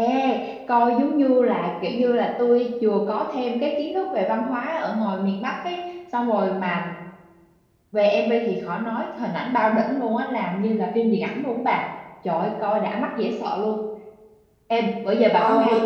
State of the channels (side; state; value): both; identical; correlation 1.00